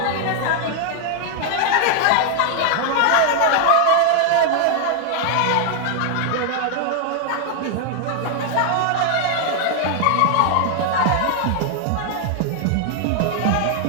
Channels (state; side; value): different; both; correlation 0.00